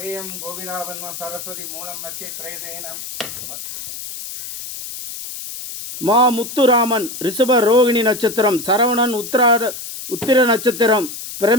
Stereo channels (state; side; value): noise; left; hiss, 10 dB below the sound